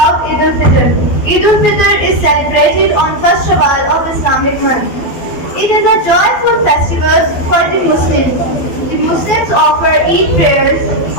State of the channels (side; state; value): right; late; 12 ms